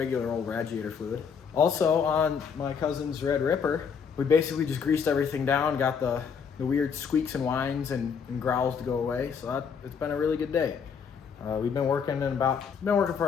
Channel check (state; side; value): quieter; right; 6.5 dB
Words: old radiator fluid. Also on my cousin's Red Ripper, we basically just greased everything down, got the weird squeaks and whines and growls to go away. So it's been a really good day. We've been working for about